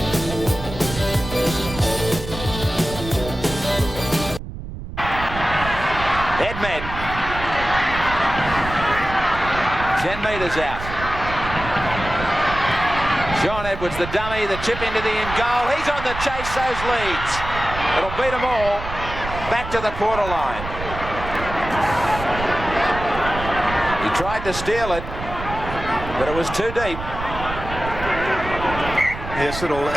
Edmed. 10 metres out. Sean Edwards, the dummy, the chip into the in goal. He's on the chase, those Leeds. It'll beat them all back to the quarter line. He tried to steal it, but it was too deep. Yes, little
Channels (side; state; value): right; noise; rumble, 9 dB below the sound